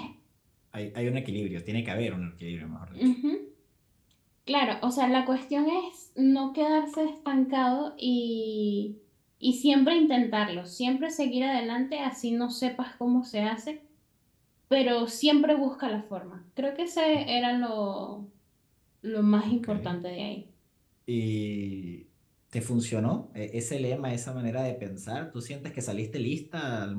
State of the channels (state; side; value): identical; both; correlation 1.00